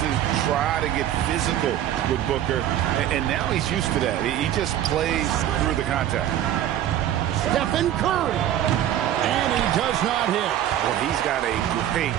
try to get physical with Booker, and now he's used to that. He just plays through the contact. Stephen Curry. And he does not hit. Well, he's got a great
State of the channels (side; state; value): left; quieter; 11.6 dB